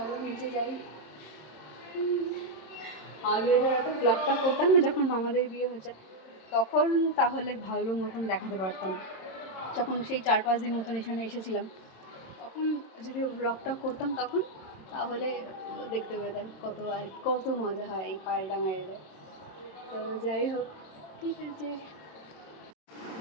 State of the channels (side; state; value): right; late; 26 ms